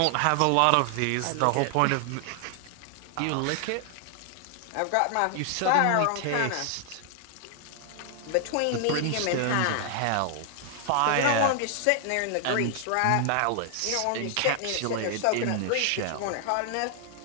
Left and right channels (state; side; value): different; both; correlation 0.00